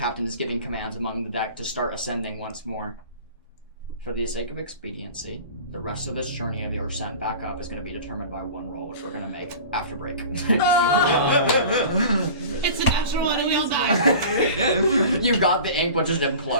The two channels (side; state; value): both; inverted; correlation -0.39